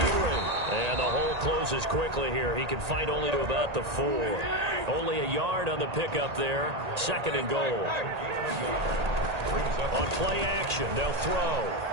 And the hole closes quickly here. He can fight only to about the 4. Only a yard on the pickup there. 2nd and goal. On play action, they'll throw.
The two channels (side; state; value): left; late; 1.8 ms